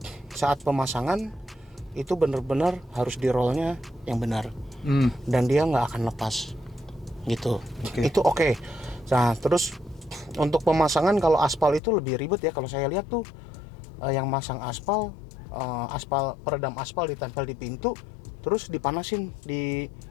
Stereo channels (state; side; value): drops out; right; at 11.8 s